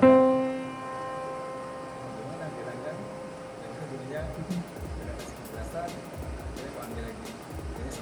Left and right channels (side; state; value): both; identical; correlation 1.00